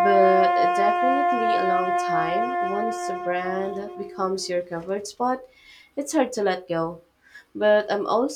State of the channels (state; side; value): identical; both; correlation 1.00